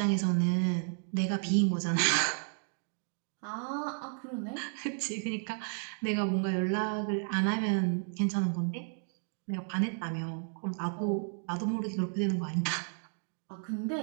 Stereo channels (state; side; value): silent; left; 55 dB below the other